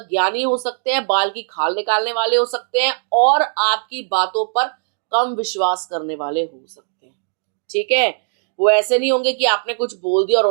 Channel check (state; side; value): silent; left; 66 dB below the other